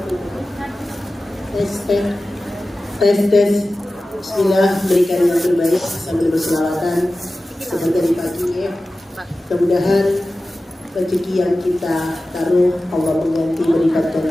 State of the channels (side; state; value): both; normal; correlation 0.95